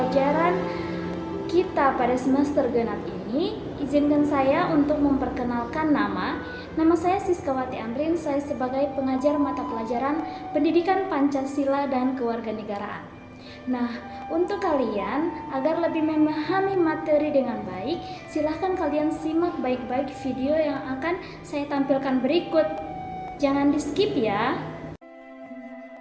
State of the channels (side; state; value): both; identical; correlation 1.00